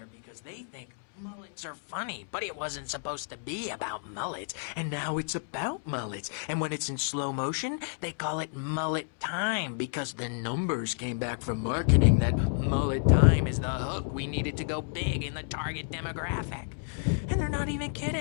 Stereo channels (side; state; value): right; silent; digital silence